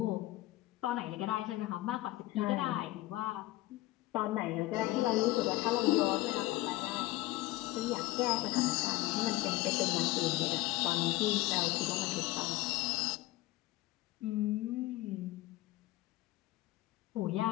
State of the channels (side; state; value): right; quieter; 18.4 dB